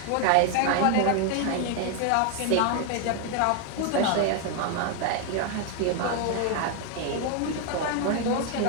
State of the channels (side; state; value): both; different; correlation 0.01